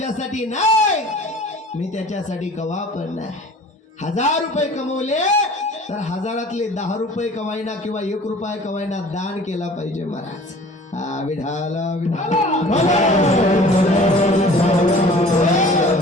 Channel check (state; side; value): normal; both; correlation 0.47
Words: नाही मी त्याच्यासाठी कवा पण नाही. 1000 रुपये कमवले तर 1000तले 10 रुपये कवायना किंवा 1 रुपया कवायना दान केला पाहिजे महाराज. हा विठाला